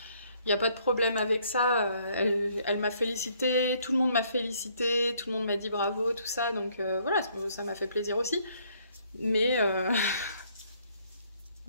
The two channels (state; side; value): inverted; both; correlation -0.66